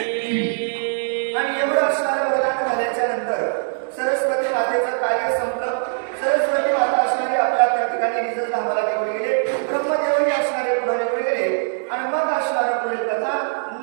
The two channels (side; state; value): left; silent; 65 dB below the other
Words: आणि एवढं असणारं वरदान झाल्याच्या नंतर सरस्वती मातेचं कार्य संपलं। सरस्वती माता असणारी आपल्या त्या ठिकाणी निज धामाला निघून गेले, ब्रह्मदेवही असणारे पुढे निघून गेले आणि मग असणारं पुढील कथा